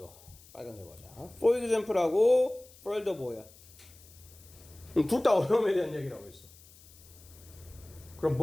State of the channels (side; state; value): left; noise; hiss, 23 dB below the sound